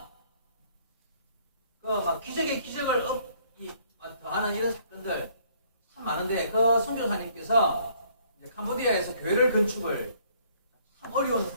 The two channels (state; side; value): inverted; both; correlation -0.63